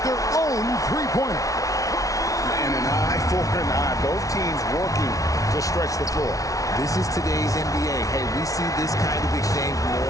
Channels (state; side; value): late; right; 0.17 ms